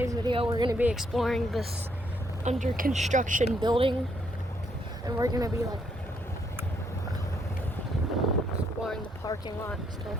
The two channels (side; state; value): both; normal; correlation 0.72